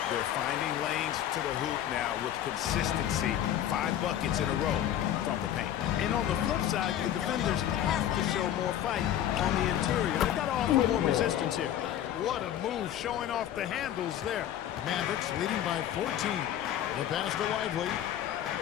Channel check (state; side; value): quieter; right; 11.2 dB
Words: They're finding lanes to the hoop now with consistency. 5 buckets in a row from the paint. And on the flip side, the defenders have to show more fight on the interior. They've got to offer more resistance here. What a move, showing off the handles there. Mavericks leading by 14. The pass to Lively.